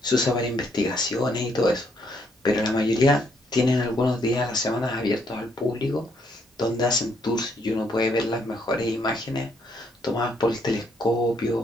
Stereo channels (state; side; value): normal; both; correlation 0.72